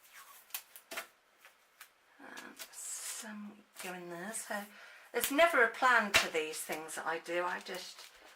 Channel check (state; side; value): identical; both; correlation 1.00